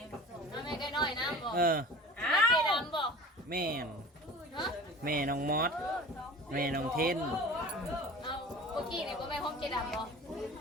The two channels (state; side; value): normal; both; correlation 0.38